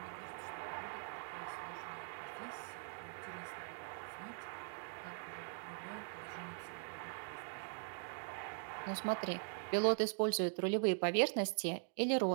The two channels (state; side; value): silent; left; digital silence